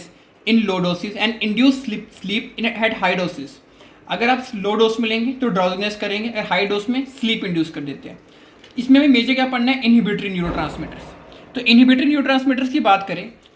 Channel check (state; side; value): identical; both; correlation 1.00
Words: in low doses and induce sleep in at high doses. अगर आप लो डोज में लेंगे तो ड्राउजीनेस करेंगे और हाई डोज में स्लीप इंड्यूस कर देते हैं. इसमें भी मेजर क्या पढ़ना है? Inhibitory neurotransmitters. तो इनहिबिटरी न्यूरोट्रांसमीटर्स की बात करें